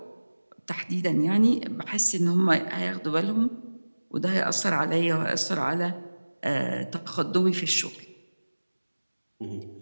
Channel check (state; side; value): inverted; both; correlation -1.00